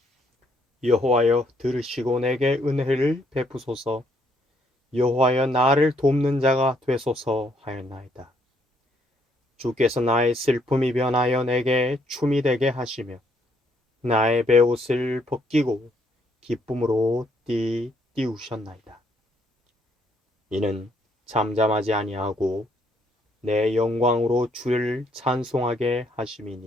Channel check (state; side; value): normal; both; correlation 0.70